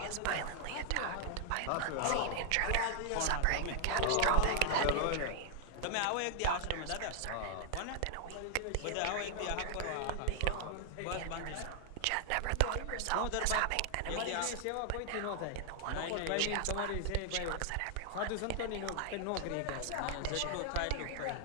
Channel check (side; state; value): both; different; correlation 0.00